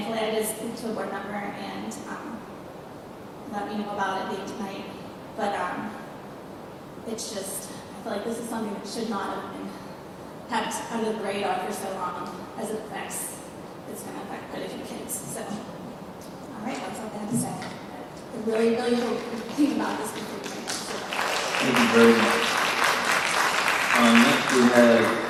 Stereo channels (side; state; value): both; identical; correlation 1.00